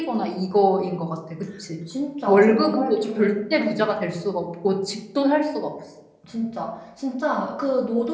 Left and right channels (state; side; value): identical; both; correlation 1.00